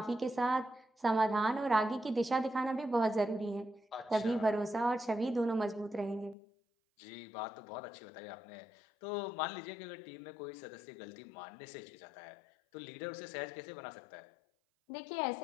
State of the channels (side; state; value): right; drops out; at 6.4 s